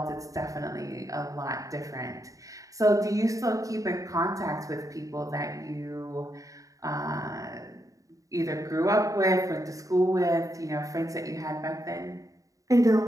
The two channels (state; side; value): late; left; 0.16 ms